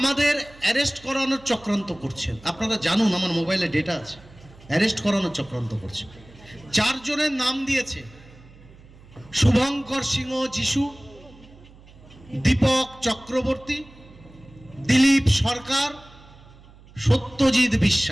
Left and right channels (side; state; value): right; noise; hum, 23 dB below the sound